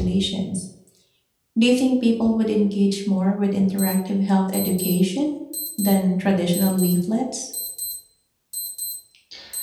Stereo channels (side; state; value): both; identical; correlation 1.00